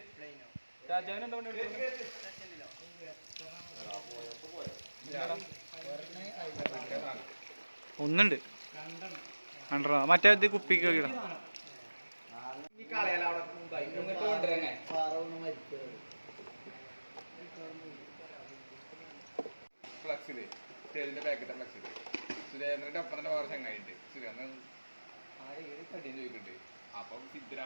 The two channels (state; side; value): inverted; both; correlation -1.00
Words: രാജാവിന് എന്താ ഒന്നുണ്ട് കണ്ടോ? മറ്റേ ഇത് കുപ്പിക്ക് ഇടാം. ഫ്ലക്സില് സ്റ്റേജിന്റെ ബാക്കിത്തെ ഫ്ലക്സില് സുരേന്ദ്രന്റെ ഒപ്പം തന്നെ വേറെ ചങ്ങായിണ്ട്. സുരേന്ദ്രൻ കടിയും ചോദിക്കുന്നുണ്ട്. അപ്പം